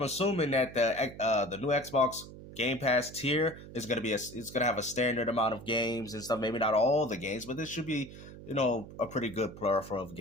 assuming that the new Xbox Game Pass tier is going to be it's going to have a standard amount of games and stuff. Maybe not all the games, but this should be, a pretty good plethora of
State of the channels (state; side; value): noise; right; hum, 15 dB below the sound